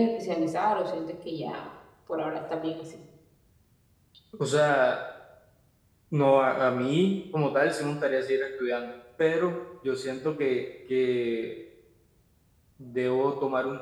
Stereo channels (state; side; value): identical; both; correlation 1.00